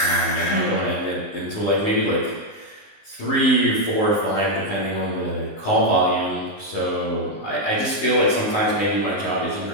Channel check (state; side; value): late; right; 19 ms